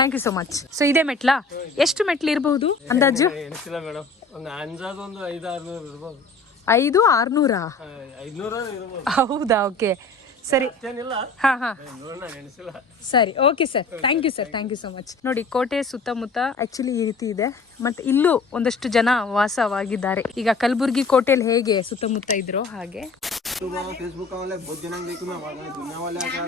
you so much. So ಇದೇ ಮೆಟ್ಲಾ? ಎಷ್ಟು ಮೆಟ್ಲು ಇರಬಹುದು ಅಂದಾಜು? 500-600? ಹೌದಾ? ಓಕೆ, ಸರಿ. ಹಾ ಹಾ, ಸರಿ, okay sir, thank you sir, thank you so much. ನೋಡಿ, ಕೋಟೆ ಸುತ್ತಮುತ್ತ ಆಕ್ಚುಲಿ ಈ ರೀತಿ ಇದೆ. ಮತ್ತೆ ಇಲ್ಲೂ ಒಂದಷ್ಟು ಜನ ವಾಸವಾಗಿದ್ದಾರೆ. ಈಗ ಕಲಬುರ್ಗಿ ಕೋಟೆಯಲ್ಲಿ ಹೇಗೆ ಸುತ್ತಮುತ್ತ ಇದ್ರು ಹಾಗೆ.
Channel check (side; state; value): right; quieter; 3.6 dB